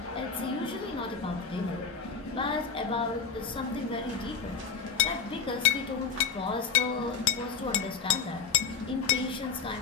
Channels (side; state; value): right; quieter; 6.0 dB